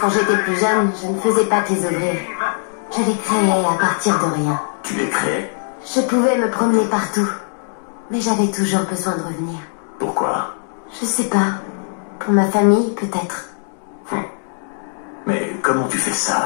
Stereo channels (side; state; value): right; silent; digital silence